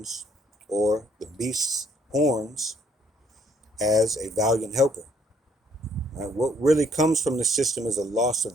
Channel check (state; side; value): normal; both; correlation 0.65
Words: or the beast's horns as a valiant helper. Right? What really comes from the system is a loss of